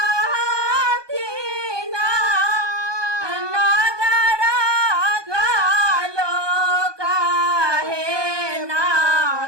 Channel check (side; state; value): left; late; 1.2 ms